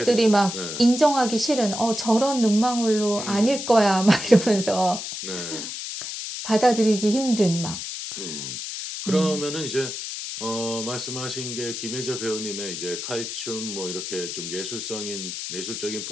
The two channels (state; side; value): noise; left; hiss, 6 dB below the sound